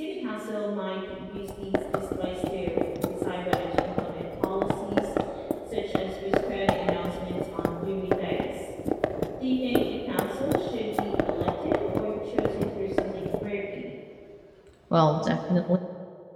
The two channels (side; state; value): both; identical; correlation 1.00